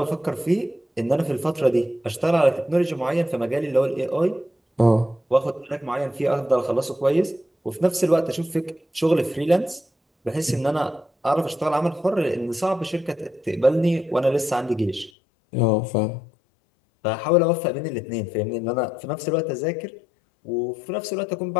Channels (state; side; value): drops out; right; at 15.1 s